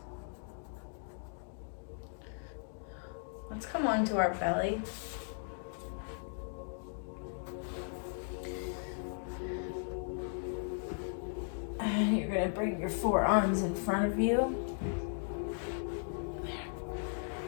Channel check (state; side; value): silent; right; digital silence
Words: Let's come onto our belly. And you're gonna bring your forearms in front of you.